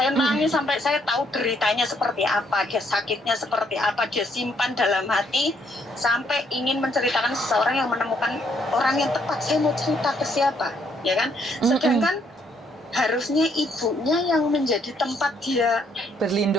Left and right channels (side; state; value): both; normal; correlation 0.70